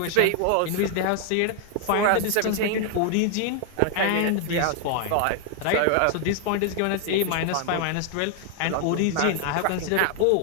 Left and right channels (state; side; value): different; both; correlation 0.00